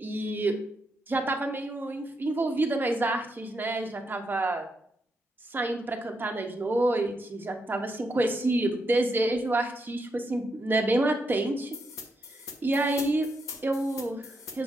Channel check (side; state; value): both; normal; correlation 0.81